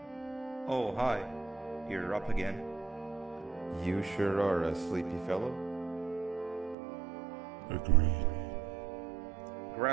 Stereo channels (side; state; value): left; drops out; at 6.8 s